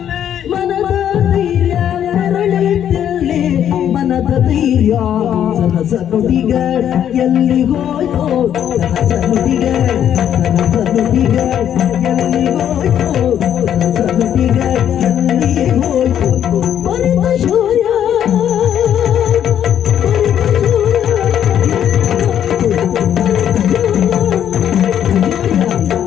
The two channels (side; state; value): right; quieter; 9.9 dB